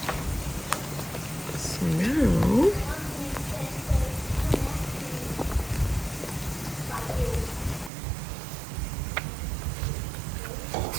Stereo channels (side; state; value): left; drops out; at 7.9 s